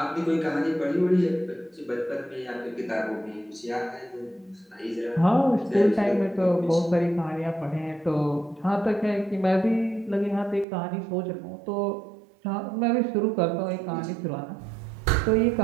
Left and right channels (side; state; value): left; drops out; at 10.7 s